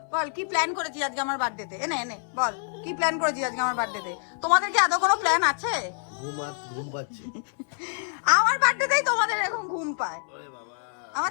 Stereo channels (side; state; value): right; silent; 60 dB below the other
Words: বল কি প্ল্যান করেছিস আজকে আমার বার্থডেতে? এনে এনে বল কি প্ল্যান করেছিস আজকে আমার বার্থডেতে? তোমাদের কি আদৌ কোনো প্ল্যান আছে? ঘুম পাচ্ছে আমার বার্থডেতেই তোমাদের এরকম ঘুম পায়। আমার